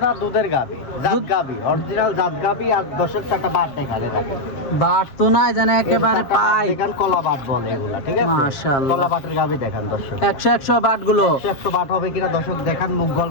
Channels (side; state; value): right; late; 7.5 ms